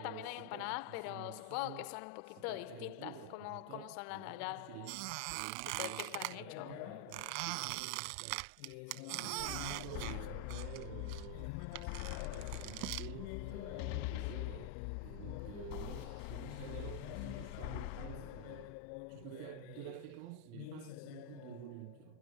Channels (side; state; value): both; different; correlation 0.00